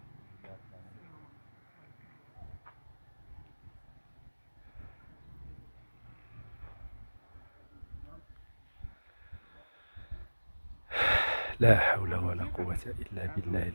لا حول ولا قوة إلا بالله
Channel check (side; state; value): both; inverted; correlation -1.00